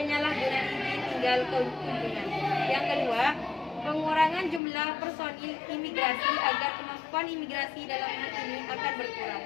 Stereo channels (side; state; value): right; drops out; at 4.6 s